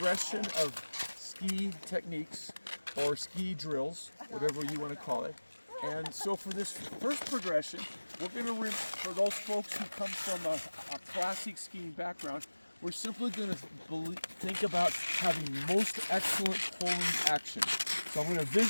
of ski techniques or ski drills, whatever you want to call it. And so for this first progression, we're going to, for those folks who come from a classic skiing background, we're simply going to think about having most excellent pulling action. So I'm going to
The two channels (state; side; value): inverted; both; correlation -1.00